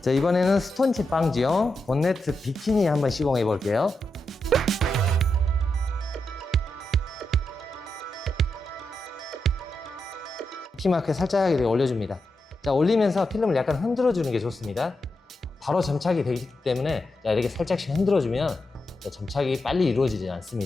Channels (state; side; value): normal; both; correlation 0.86